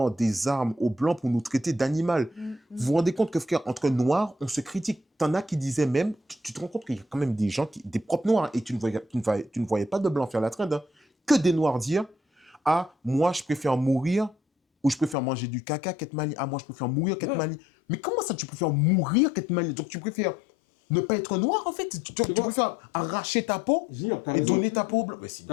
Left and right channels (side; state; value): right; drops out; at 15.2 s